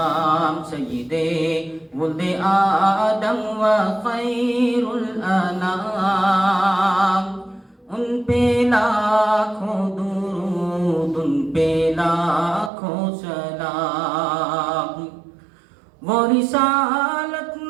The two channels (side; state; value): left; drops out; at 12.7 s